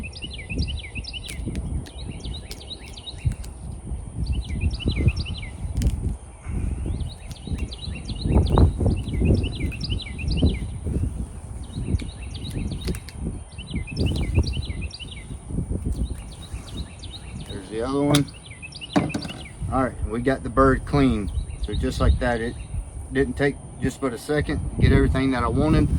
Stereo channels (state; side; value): identical; both; correlation 1.00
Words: The other one. All right, we got the bird clean. So just like that, it didn't take just but a second to get everything that I wanted.